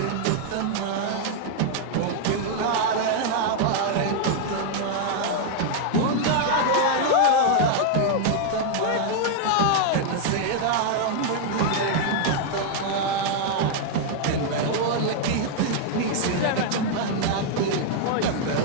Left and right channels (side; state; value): both; different; correlation 0.00